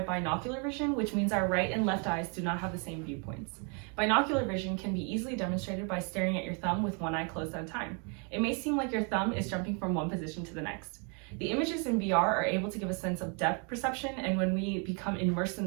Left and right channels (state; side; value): quieter; left; 36.6 dB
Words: binocular vision, which means our right and left eyes do not have the same viewpoints. Binocular vision can be easily demonstrated by staring at your thumb with one eye closed at a time. It may seem like your thumb is jumping from one position to the next. The images in VR are able to give a sense of depth perception, and when we become immersed in